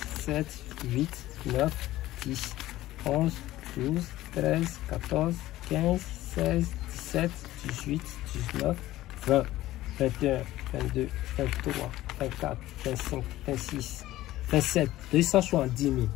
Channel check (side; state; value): right; quieter; 15.7 dB